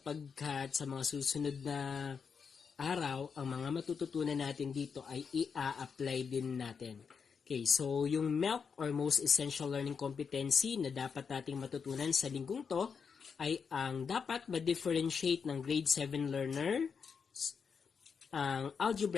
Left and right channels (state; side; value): quieter; right; 6.1 dB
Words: sa mga susunod na araw, ang mga matututunan natin dito ay i-apply din natin. Okay, so yung MELC or Most Essential Learning Competency na dapat nating matutunan sa linggong to ay ang dapat ma-differentiate ng grade 7 learner ang